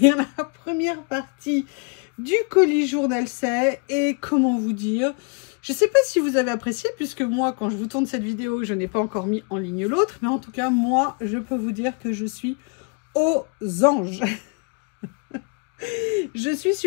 la première partie du colis journal C'est et comment vous dire, je sais pas si vous avez apprécié puisque moi quand je vous tourne cette vidéo je n'ai pas encore mis en ligne l'autre, mais en tout cas moi je peux vous dire que je suis aux anges. Je suis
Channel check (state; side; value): quieter; right; 35.1 dB